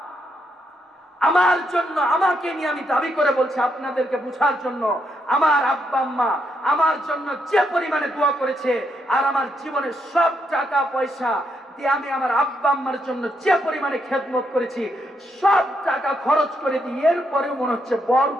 আমার জন্য, আমাকে নিয়ে আমি দাবি করে বলছি আপনাদেরকে বুঝার জন্য, আমার আব্বা আম্মা আমার জন্য যে পরিমাণে দোয়া করেছে, আর আমার জীবনের সব টাকা পয়সা দিয়ে আমি আমার আব্বা আম্মার জন্য যে পরিমাণে খেদমত করেছি, সব টাকা খরচ করে দিই, এরপরেও মনে হচ্ছে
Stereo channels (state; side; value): normal; both; correlation 0.78